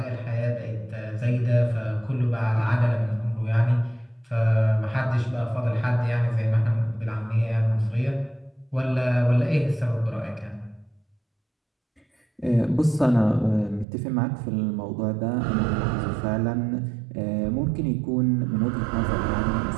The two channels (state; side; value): drops out; left; at 13.9 s